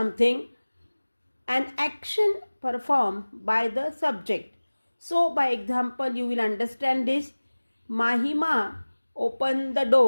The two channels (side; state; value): both; inverted; correlation -1.00